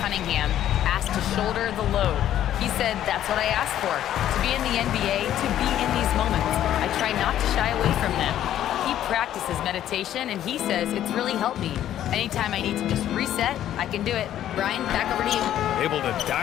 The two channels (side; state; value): right; quieter; 11.6 dB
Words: Cunningham, asked to shoulder the load. He said, that's what I asked for, to be in the NBA, to be in these moments. I try not to shy away from them. He practices meditation, and he says it's really helped me. Anytime I need to just reset, I can do it. Brian, back over to you. Able to